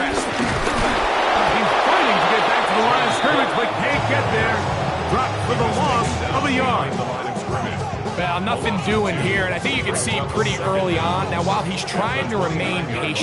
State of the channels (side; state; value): both; identical; correlation 1.00